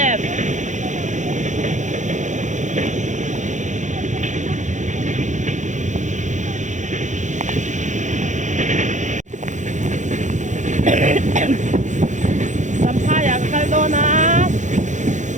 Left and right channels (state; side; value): late; left; 0.35 ms